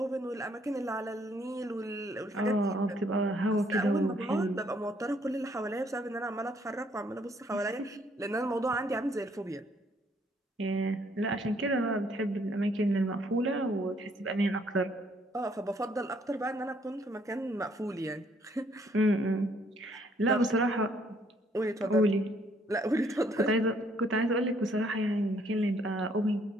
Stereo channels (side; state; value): both; normal; correlation 0.66